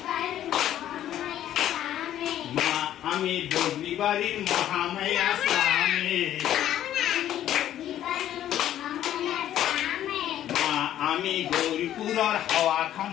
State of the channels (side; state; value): right; quieter; 11.8 dB